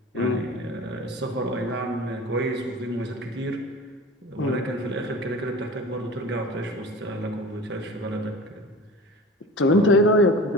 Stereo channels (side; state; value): both; normal; correlation 0.36